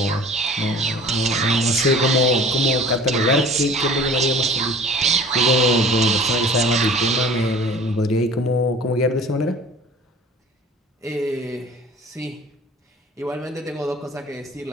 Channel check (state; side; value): normal; both; correlation 0.45